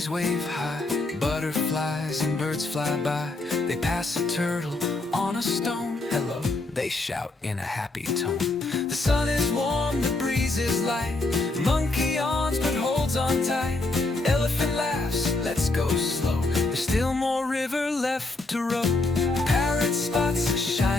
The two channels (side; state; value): right; quieter; 3.1 dB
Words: wave high, butterflies and birds fly by. They pass a turtle on a stone, hello, they shout in a happy tone. The sun is warm, the breeze is light. Monkey yawns but holds on tight. Elephant laughs, let's go slow, there's still more river left to row. Parrot spots a